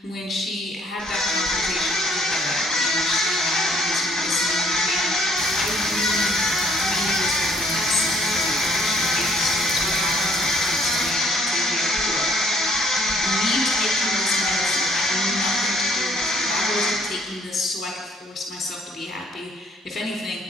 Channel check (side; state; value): both; normal; correlation 0.64